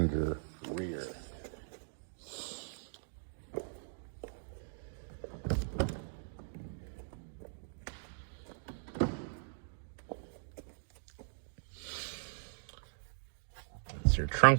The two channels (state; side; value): silent; left; digital silence